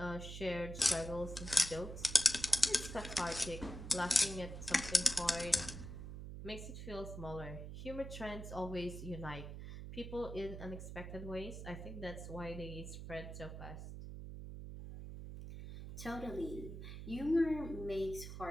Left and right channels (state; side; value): noise; right; hum, 9 dB below the sound